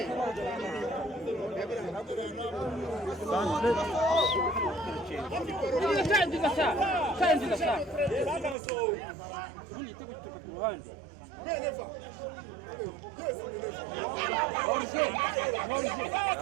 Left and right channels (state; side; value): drops out; left; at 8.6 s